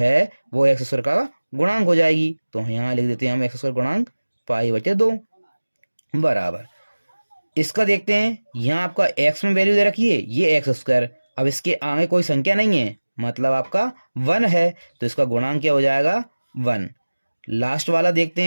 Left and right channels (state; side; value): inverted; both; correlation -1.00